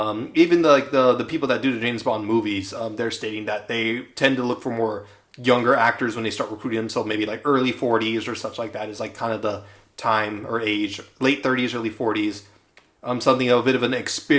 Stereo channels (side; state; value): both; identical; correlation 1.00